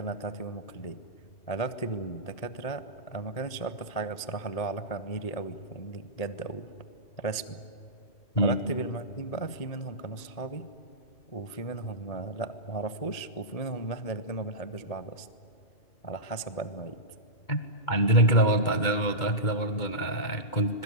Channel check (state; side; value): late; right; 1.8 ms